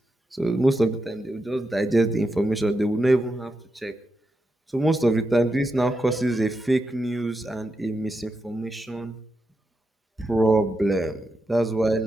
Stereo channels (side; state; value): both; normal; correlation 0.86